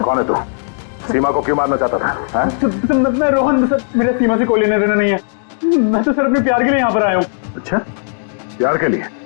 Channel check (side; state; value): right; silent; digital silence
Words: है तू? सीमा को क्यों मारना चाहता था? मैं रोहन, सर मेरा सीमा से कोई लेना देना नहीं है। मैं तो सर अपने प्यार के लिए यहाँ पर आया हूँ। अच्छा, प्यार के लिए?